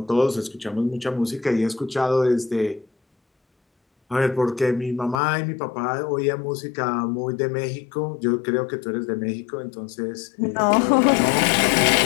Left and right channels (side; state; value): right; drops out; at 5.2 s